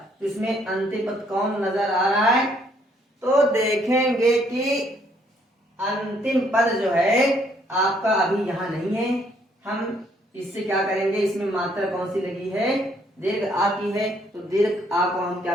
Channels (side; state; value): both; normal; correlation 0.67